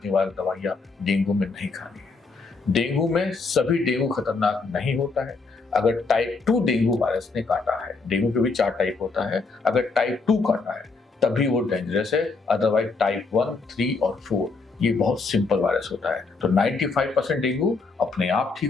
निवारक दवाइयां डेंगू में नहीं खानी है। डेंगू में सभी डेंगू खतरनाक नहीं होता है। अगर टाइप 2 डेंगू वायरस ने काटा है, डेंगू के भी 4 टाइप होता है, अगर टाइप 2 काटा है तभी वो डेंजरस है। अदरवाइज टाइप 1, 3 और 4 ये बहुत सिंपल वायरस होता है। तो 95% डेंगू अपने आप ठीक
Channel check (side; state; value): right; quieter; 4.1 dB